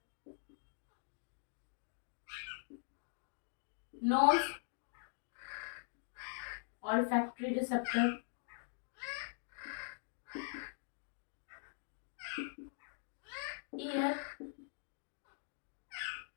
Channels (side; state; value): right; silent; digital silence